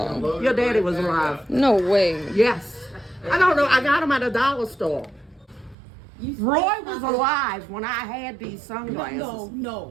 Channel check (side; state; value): left; drops out; at 5.8 s